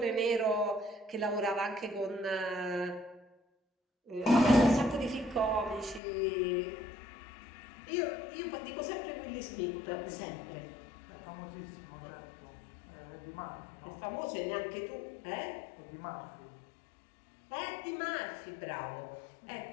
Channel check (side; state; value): right; drops out; at 6.0 s